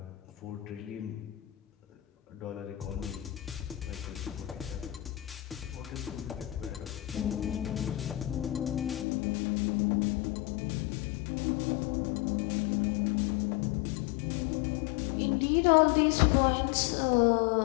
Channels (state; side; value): drops out; right; at 9.1 s